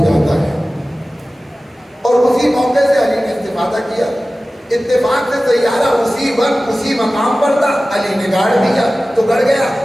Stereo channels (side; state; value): both; normal; correlation 0.96